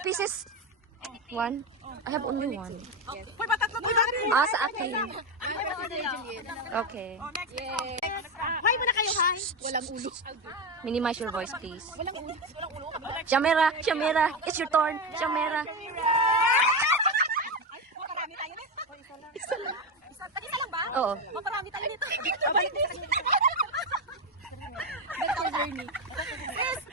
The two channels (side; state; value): both; normal; correlation 0.13